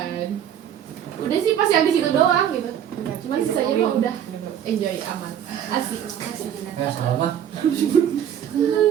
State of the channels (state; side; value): quieter; left; 9.7 dB